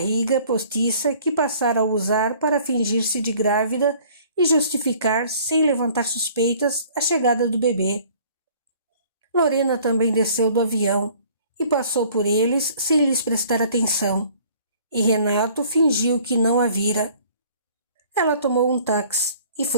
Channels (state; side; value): inverted; both; correlation -0.54